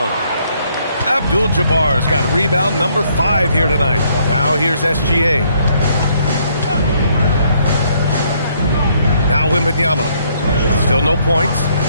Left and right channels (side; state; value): both; inverted; correlation -0.68